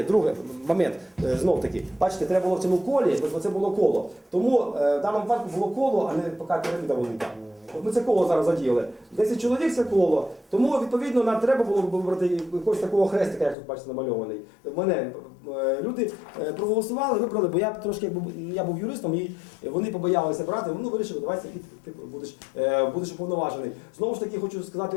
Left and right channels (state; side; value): drops out; right; at 13.6 s